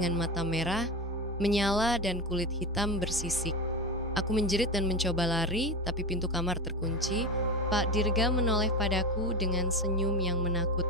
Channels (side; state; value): both; normal; correlation 0.21